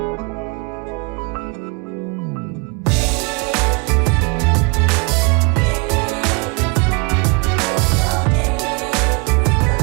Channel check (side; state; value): left; quieter; 30.5 dB